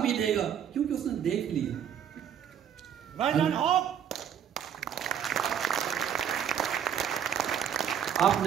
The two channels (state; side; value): quieter; left; 8.9 dB